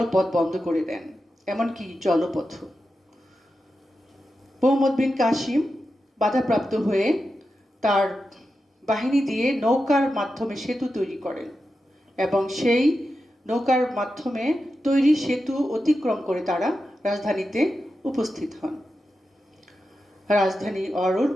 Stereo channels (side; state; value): both; normal; correlation 0.90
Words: পথ বন্ধ করে দেন, এমনকি জলপথ। মোহাম্মদ বিন কাসিম বাধাপ্রাপ্ত হয়ে তার বাহিনী দিয়ে নৌকার মাধ্যমে সেতু তৈরি করেন এবং সেই নৌকার মাধ্যমে তৈরি সেতু অতিক্রম করে তারা রাজধানীতে উপস্থিত হন। রাজধানী অরোর